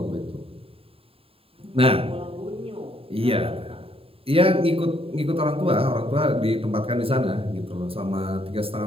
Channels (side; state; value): left; late; 0.27 ms